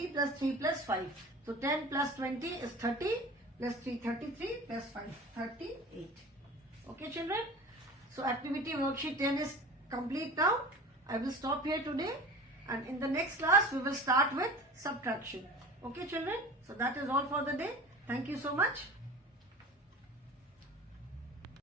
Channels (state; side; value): normal; both; correlation 0.37